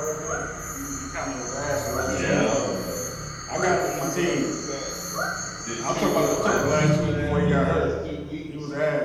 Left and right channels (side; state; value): both; identical; correlation 1.00